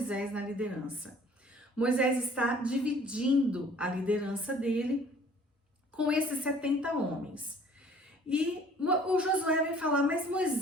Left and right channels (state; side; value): normal; both; correlation 0.54